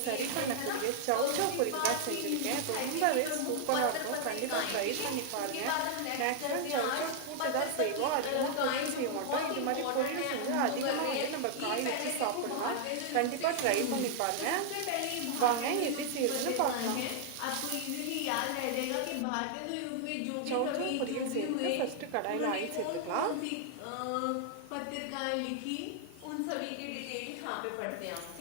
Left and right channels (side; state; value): both; different; correlation 0.00